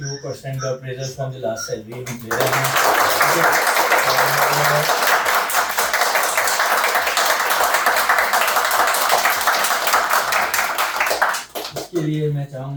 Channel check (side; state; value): both; identical; correlation 1.00